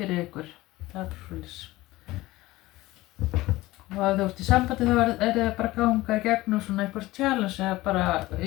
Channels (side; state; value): right; quieter; 18.4 dB